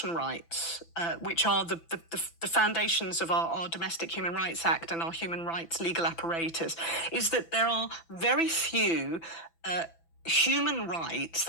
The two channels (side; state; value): right; late; 6.0 ms